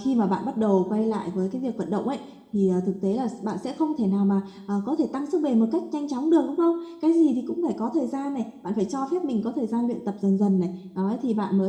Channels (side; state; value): both; identical; correlation 1.00